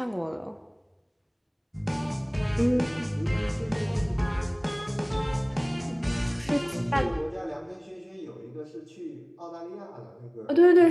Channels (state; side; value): identical; both; correlation 1.00